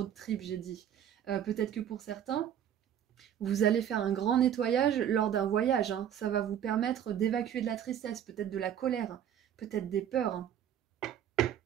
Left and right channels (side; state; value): left; quieter; 9.8 dB